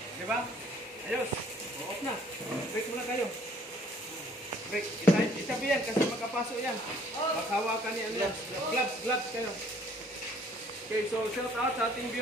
Di ba? Ayos. Off na. Break muna kayo. Break. Isabi yan kasi makapasok yan. Maghawakan yan. Gloves kayo. Okay, so shout out sa ating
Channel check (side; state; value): both; normal; correlation 0.59